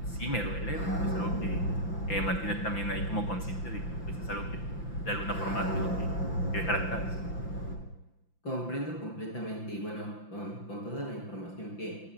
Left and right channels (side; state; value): right; late; 5.9 ms